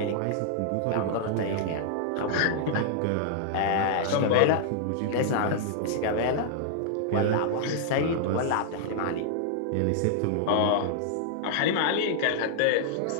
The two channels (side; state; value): both; different; correlation -0.01